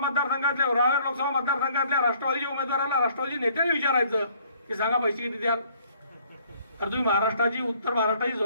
रावेर लोकसभा मतदारसंघातल्या राष्ट्रवादीच्या उमेदवाराला राष्ट्रवादी नेत्याने विचारायचं की सांगा पैसे किती द्याल. तर तुम्ही महाराष्ट्राची, उत्तर महाराष्ट्राची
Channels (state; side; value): inverted; both; correlation -0.60